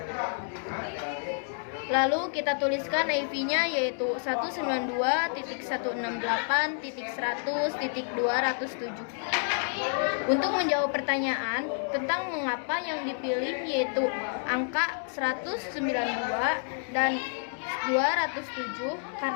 Lalu kita tuliskan IP-nya yaitu 192.168.100.207. Untuk menjawab pertanyaan tentang mengapa yang dipilih yaitu angka 192 dan 207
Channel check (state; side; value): silent; right; 58 dB below the other